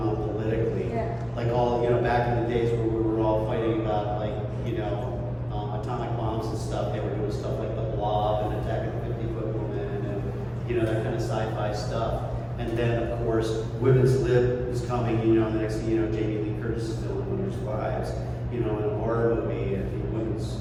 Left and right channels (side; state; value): both; identical; correlation 1.00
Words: politically. Yeah. Like all, back in the days where we were all fighting about atomic bombs and stuff, they were doing stuff like The Blob and Attack of the 50-Foot Woman and, that kind of sci-fi stuff. And then, of course, Women's Lib is coming, the next thing Jamie Lee Curtis is doing Winter's Wives, in a horror movie, and women's,